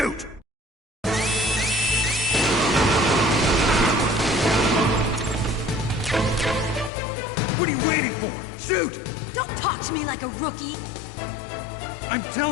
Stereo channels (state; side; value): drops out; right; at 6.9 s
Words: What are you waiting for? Shoot! Don't talk to me like a rookie! I'm